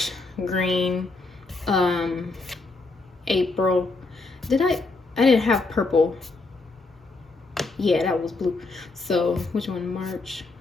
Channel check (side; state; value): right; quieter; 3.6 dB